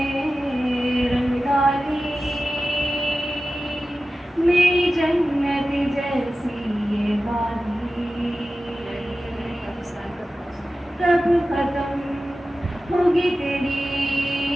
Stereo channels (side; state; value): both; normal; correlation 0.94